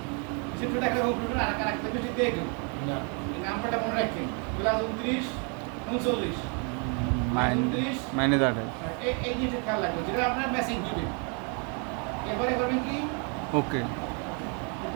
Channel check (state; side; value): quieter; left; 37.0 dB